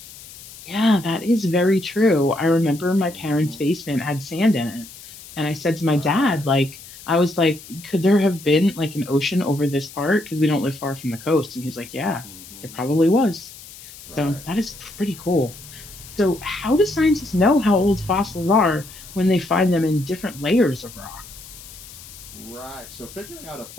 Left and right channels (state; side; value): noise; left; hiss, 17 dB below the sound